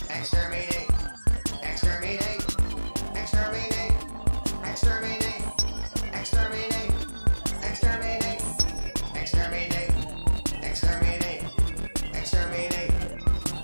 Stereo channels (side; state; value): both; inverted; correlation -1.00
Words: Exterminate. Exterminate. Exterminate. Exterminate. Exterminate. Exterminate. Exterminate. Exterminate. Exterminate.